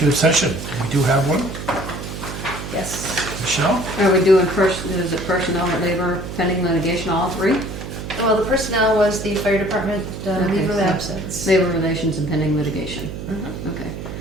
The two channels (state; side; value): noise; right; hum, 8 dB below the sound